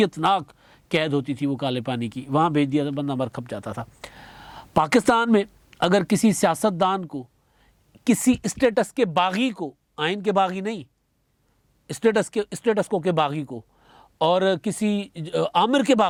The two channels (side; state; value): both; identical; correlation 1.00